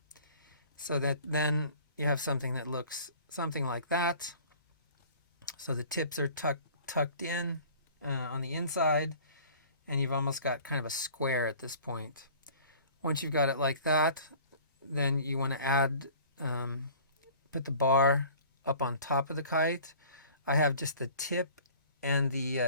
so that then you have something that looks something like that. So the tips are tucked in on the inside, and you've almost got kind of a square at this point. Once you've got it like that, then you want to add, put the bar up on top of the kite. I have just the tip and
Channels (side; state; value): both; inverted; correlation -0.47